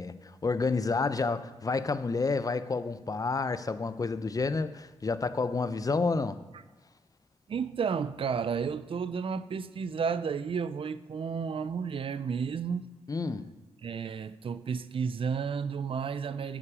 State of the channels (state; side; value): normal; both; correlation 0.69